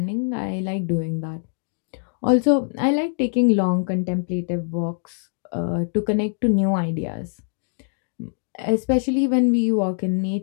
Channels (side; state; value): right; silent; digital silence